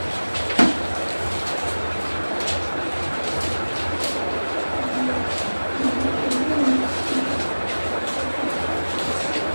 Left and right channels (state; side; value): inverted; both; correlation -1.00